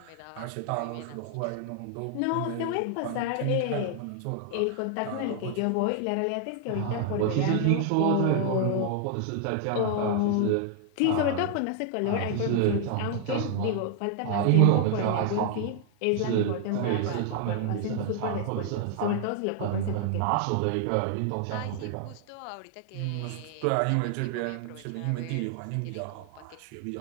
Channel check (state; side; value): different; both; correlation 0.00